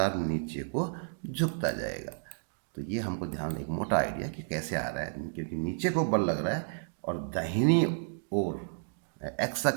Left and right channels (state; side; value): silent; left; digital silence